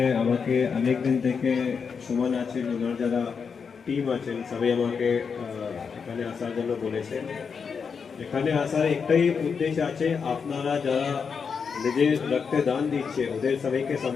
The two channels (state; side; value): quieter; right; 5.9 dB